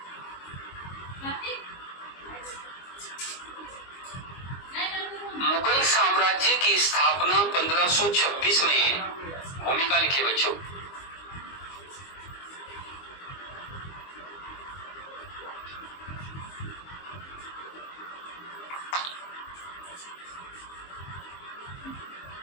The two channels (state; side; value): late; right; 22 ms